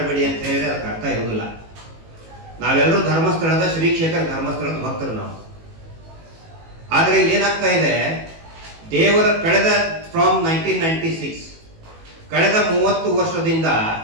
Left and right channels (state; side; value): late; left; 18 ms